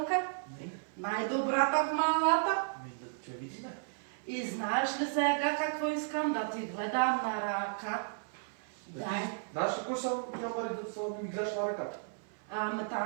Не. Най-добрата в малата. Да те видиме. И знаеш ли сега какво искам да ти гледам на ръка? Дай. Знаеш ли кой съм, Мари, да ми гледаш на ръката? Ами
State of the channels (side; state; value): left; silent; 55 dB below the other